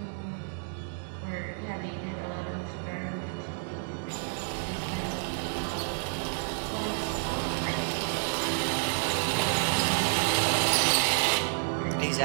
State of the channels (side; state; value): left; silent; 58 dB below the other